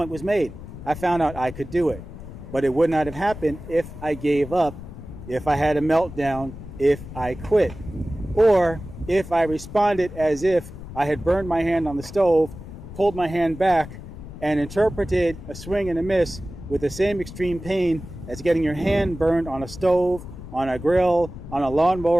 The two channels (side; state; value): left; noise; rumble, 13 dB below the sound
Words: was made. I found out I could do it. But it would not have happened if I gave up, if I had a meltdown, if I quit, or if I responded as if I had burned my hand on the stove, pulled my hand back, and interpreted a swing and a miss with the same extreme pain as getting your hand burned on a stove, on a grill, on a